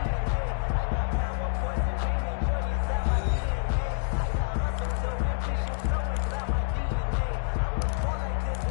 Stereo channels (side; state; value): right; silent; digital silence